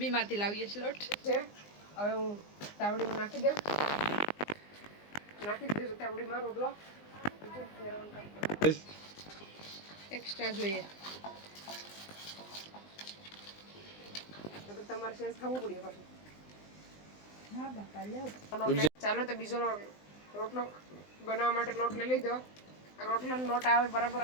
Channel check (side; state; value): right; late; 19 ms